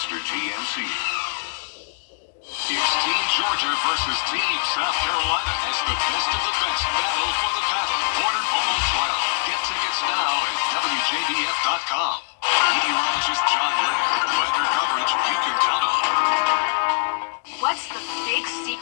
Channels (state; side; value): silent; right; digital silence